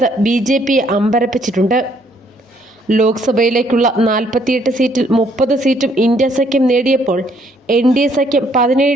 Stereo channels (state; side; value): normal; both; correlation 0.67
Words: ബി.ജെ.പിയെ അമ്പരപ്പിച്ചിട്ടുണ്ട്. ലോക്സഭയിലേക്കുള്ള 48 സീറ്റിൽ 30 സീറ്റും ഇന്ത്യ സഖ്യം നേടിയപ്പോൾ എൻ.ഡി.എ സഖ്യം